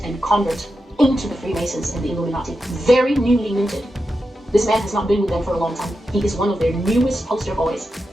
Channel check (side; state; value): both; normal; correlation 0.89